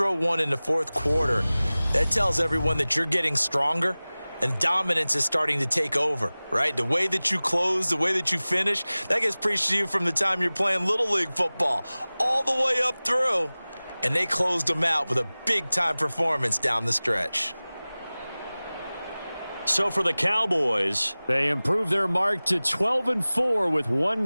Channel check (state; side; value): inverted; both; correlation -0.99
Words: one in the fourth quarter, that tells everyone that you're getting stronger and dominance is starting to take over, right? The way that you close, the way that you finish, that gets preached to you from the time you're playing Little League football all the way up through. And they closed them out with a big-time performance down the stretch. So for the Cowboys, they improve their mark to 12-4 with